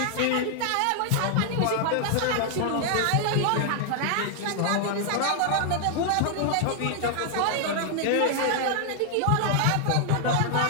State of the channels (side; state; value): both; different; correlation 0.00